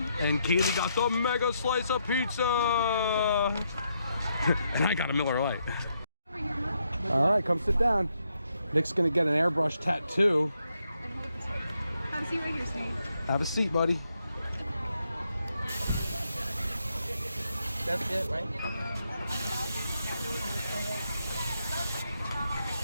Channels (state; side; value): inverted; both; correlation -0.78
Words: And Kaylee got the mega slice of pizza. And I got a Miller Lite. All right, come sit down. Nick's gonna get an airbrush tattoo. Have a seat right here, Snake. Have a seat, buddy. That's it, right?